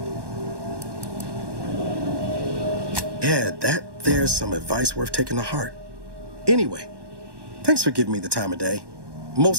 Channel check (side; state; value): left; late; 1.1 ms